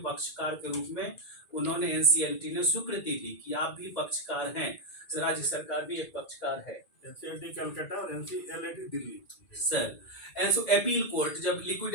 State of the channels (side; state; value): right; late; 1.7 ms